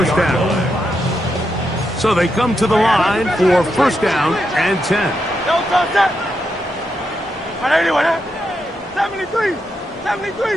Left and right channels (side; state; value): both; normal; correlation 0.83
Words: down. So they come to the line for first down and 10. All right, anyway, 73. And